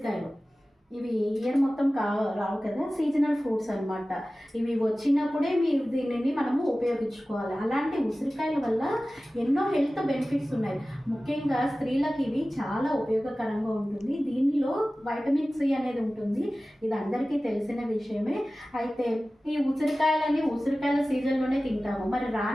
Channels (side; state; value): both; normal; correlation 0.96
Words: ఇవి ఇయర్ మొత్తం రావు కదా, సీజనల్ ఫ్రూట్స్ అనమాట. ఇవి వచ్చినప్పుడే మీరు దీనిని మనము ఉపయోగించుకోవాలి. అలాంటి ఉసిరికాయల వల్ల ఎన్నో హెల్త్ బెనిఫిట్స్ ఉన్నాయి. ముఖ్యంగా స్త్రీలకు ఇవి చాలా ఉపయోగకరంగా ఉంటుంది. దీనిలో వైటమిన్ సి అనేది ఉంటుంది. ఇది అందరికీ తెలిసిన విషయమే. అయితే ఈ ఉసిరికాయల సీజన్లోనే తింటాము. మరి